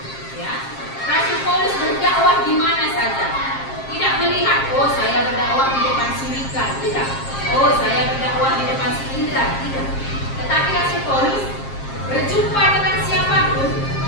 Ya, Rasul Paulus berdakwah di mana saja. Tidak melihat, oh saya berdakwah di depan Sulika, tidak. Oh saya berdakwah di depan Indra, tidak. Tetapi Rasul Paulus berjumpa dengan siapapun,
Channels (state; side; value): late; right; 7.5 ms